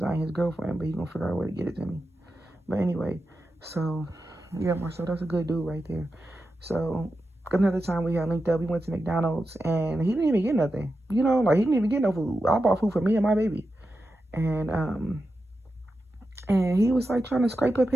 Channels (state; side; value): normal; both; correlation 0.90